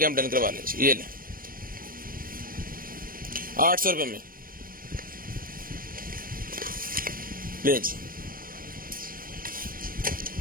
डन करवा लें। ये लें 800 रुपये में ले जी।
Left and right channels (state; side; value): late; left; 0.41 ms